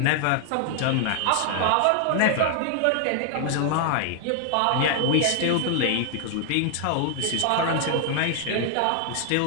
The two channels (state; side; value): different; both; correlation 0.00